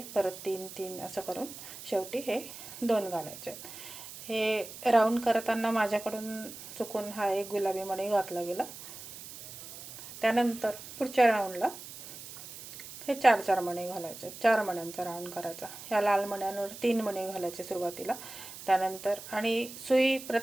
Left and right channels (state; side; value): noise; right; hiss, 13 dB below the sound